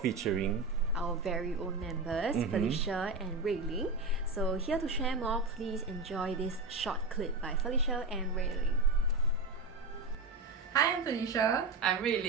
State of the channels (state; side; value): quieter; left; 3.6 dB